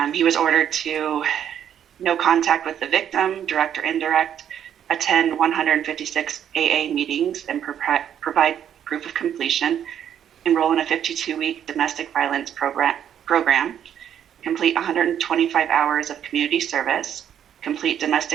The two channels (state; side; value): quieter; left; 9.5 dB